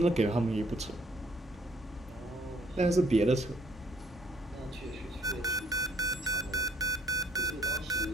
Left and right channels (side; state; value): both; normal; correlation 0.64